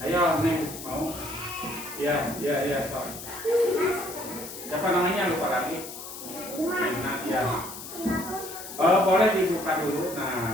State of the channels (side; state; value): left; noise; hiss, 11 dB below the sound